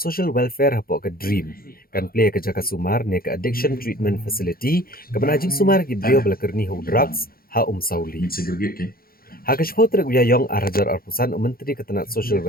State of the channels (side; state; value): right; late; 0.43 ms